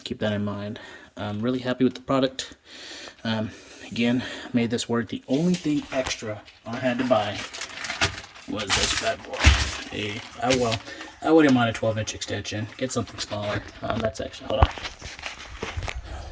keep that in mind. I'm really happy with the product. Again, made this work. The only thing extra I had to buy was this bad boy. I wouldn't mind a 12-inch extension. Get something smaller. That's actually, hold on.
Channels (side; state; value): both; identical; correlation 1.00